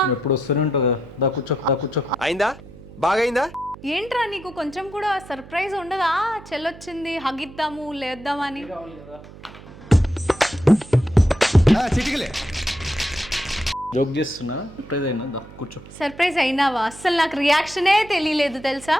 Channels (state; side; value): noise; right; hum, 18 dB below the sound